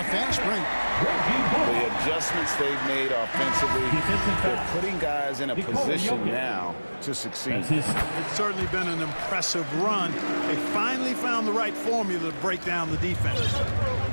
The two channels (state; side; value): inverted; both; correlation -1.00